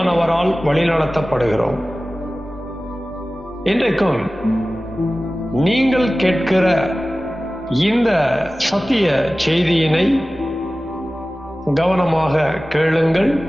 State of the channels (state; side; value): noise; left; rumble, 28 dB below the sound